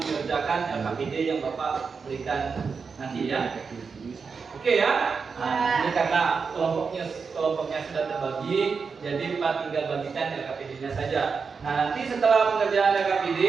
LKPD yang Bapak berikan nanti ya. Oke ya. Nah, ini karena kelompoknya sudah terbagi, jadi Pak tinggal bagikan LKPD-nya saja. Nah, nanti setelah pengerjaan LKPD,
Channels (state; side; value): quieter; left; 5.3 dB